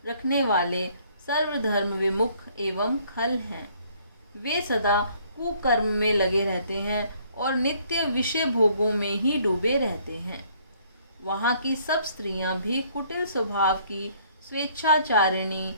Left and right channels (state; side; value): inverted; both; correlation -0.62